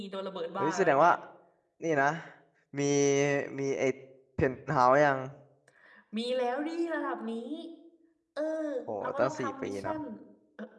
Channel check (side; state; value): both; identical; correlation 1.00